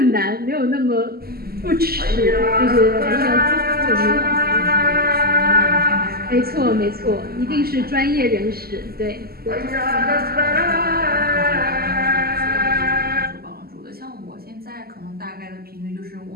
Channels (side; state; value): left; late; 0.45 ms